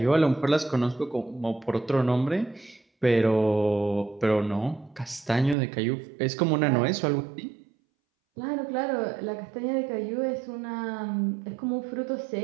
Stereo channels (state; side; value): drops out; left; at 5.6 s